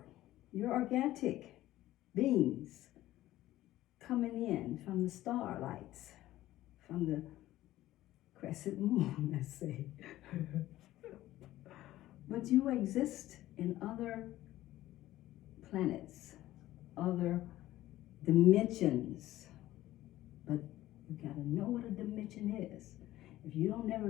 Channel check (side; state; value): right; quieter; 15.1 dB